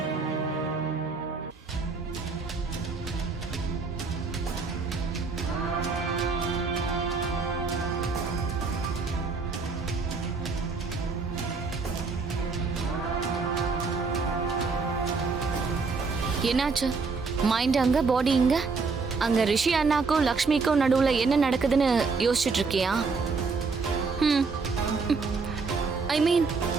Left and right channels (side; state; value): left; quieter; 4.5 dB